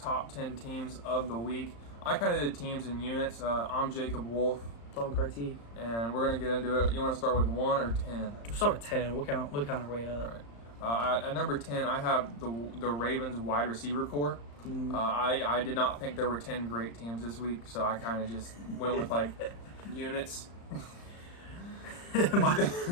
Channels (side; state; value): right; late; 35 ms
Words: 10 teams of the week. I kind of did teams in units. I'm Jacob Wolf. Tom Carty. And we're going to get into it. You want to start with 1 or 10? We'll start with 10. We'll count our way up. All right. At number 10, I have the Ravens wide receiver core. I did not think there were 10 great teams this week, so I kind of just went with units.